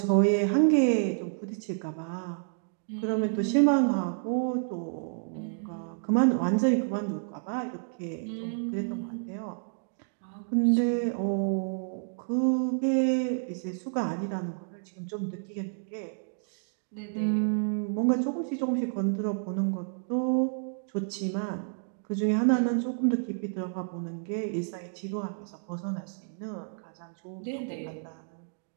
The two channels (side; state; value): left; silent; digital silence